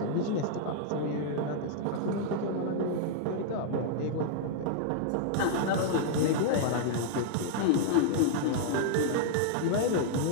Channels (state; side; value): different; both; correlation -0.01